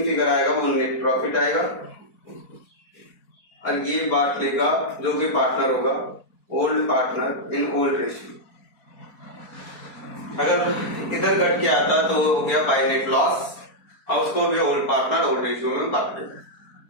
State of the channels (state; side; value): late; right; 4.5 ms